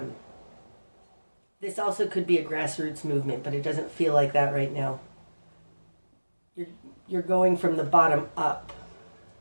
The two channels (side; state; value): both; inverted; correlation -1.00